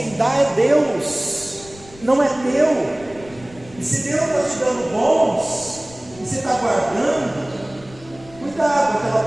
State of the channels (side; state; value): left; noise; rumble, 21 dB below the sound